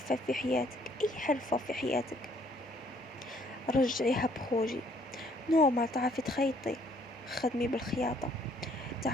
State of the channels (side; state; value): both; normal; correlation 0.63